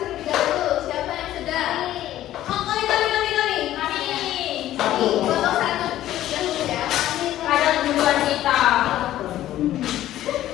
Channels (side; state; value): right; quieter; 13.4 dB